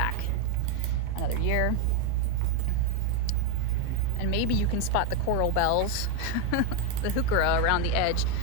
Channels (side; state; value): both; different; correlation 0.02